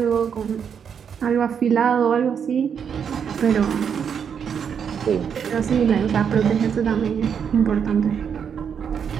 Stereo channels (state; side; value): quieter; left; 7.4 dB